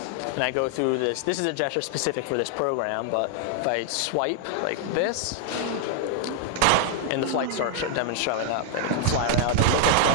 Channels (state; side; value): different; both; correlation 0.00